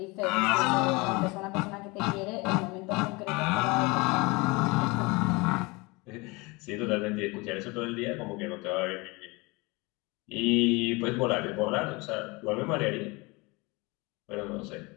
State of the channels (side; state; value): right; quieter; 25.6 dB